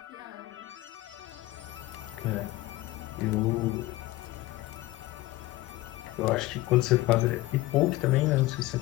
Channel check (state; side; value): quieter; right; 18.1 dB